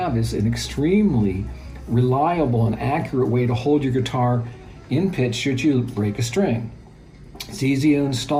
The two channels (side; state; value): both; identical; correlation 1.00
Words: is an extremely reliable and accurate way to hold your guitar in pitch should you break a string. It's easy to